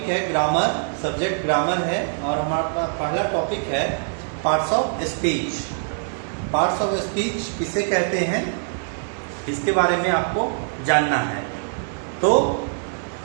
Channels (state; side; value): silent; left; digital silence